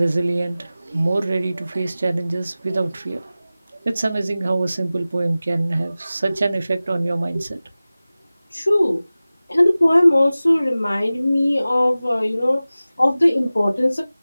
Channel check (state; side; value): inverted; both; correlation -0.97